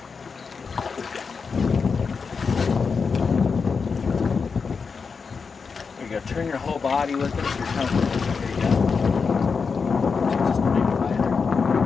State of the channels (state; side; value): quieter; right; 5.3 dB